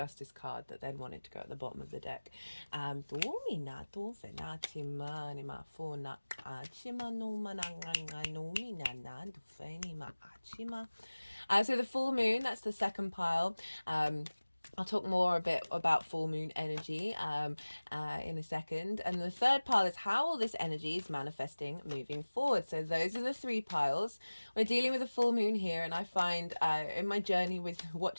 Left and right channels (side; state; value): both; inverted; correlation -1.00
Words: card that then wanted to go at the bottom of the deck. So the full moon, that's the second pile. I'll talk more a bit about full moon energy in a second. And the third pile is how all this energy is manifesting moving forward. So those are the three piles. We're dealing with a full moon here, and I find in my journey with